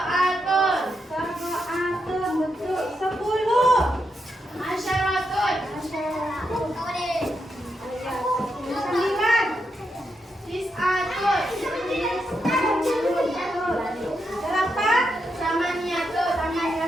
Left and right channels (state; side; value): normal; both; correlation 0.83